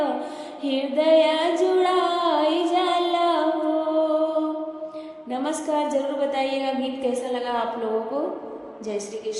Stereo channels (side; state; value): both; identical; correlation 1.00